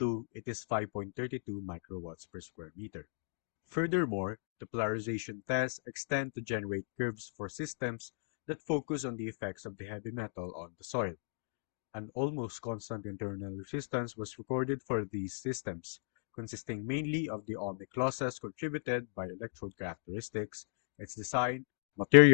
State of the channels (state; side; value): silent; right; digital silence